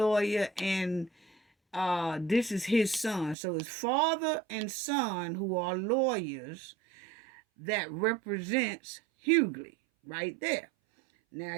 and this is his son. So it's father and son who are lawyers that represents Hughley right there. Now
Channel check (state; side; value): drops out; left; at 3.4 s